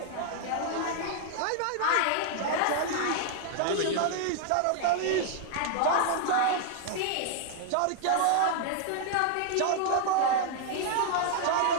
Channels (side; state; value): both; different; correlation 0.00